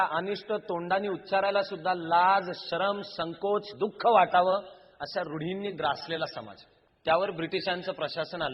अनिष्ट तोंडाने उच्चारायला सुद्धा लाज, शरम, संकोच, दुःख वाटावं अशा रूढींनी ग्रासलेला समाज. त्यावर ब्रिटिशांचं प्रशासन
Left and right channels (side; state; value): both; identical; correlation 1.00